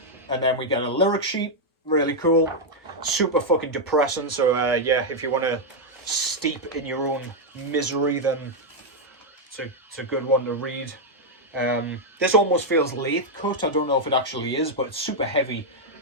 and then we get a lyric sheet. Really cool. Super fucking depressing. So yeah, if you want to steep in your own misery, then it's a good one to read. This almost feels lathe cut. I don't know if it actually is, but it's super heavy,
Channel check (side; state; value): both; normal; correlation -0.01